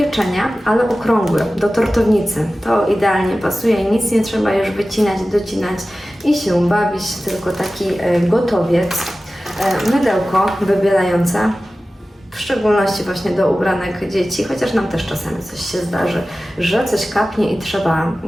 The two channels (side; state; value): both; normal; correlation 0.96